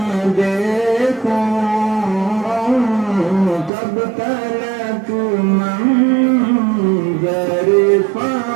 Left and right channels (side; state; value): left; drops out; at 3.7 s